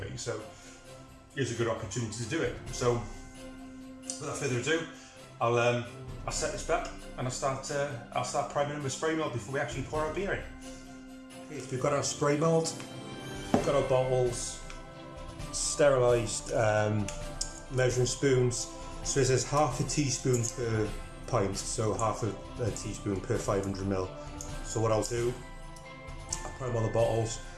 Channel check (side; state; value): both; identical; correlation 1.00